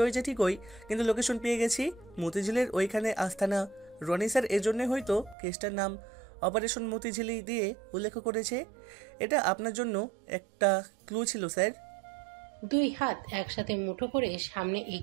হয়েছে ঠিকই, কিন্তু লোকেশন পেয়ে গেছি। মতিঝিলের ওইখানে আস্তানা। রনি স্যার এজন্য হয়তো কেসটার নাম অপারেশন মতিঝিলি দিয়ে উল্লেখ করেছে। এটা আপনার জন্য একটা ক্লু ছিল স্যার। দুই হাত একসাথে মুঠো করে সামনে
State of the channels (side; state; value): left; drops out; at 5.4 s